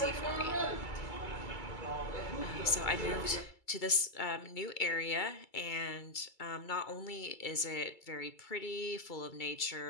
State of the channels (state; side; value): late; right; 2.3 ms